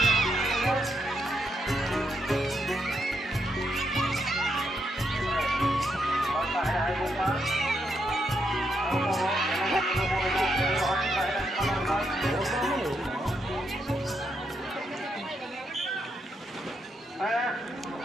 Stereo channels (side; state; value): both; normal; correlation 0.80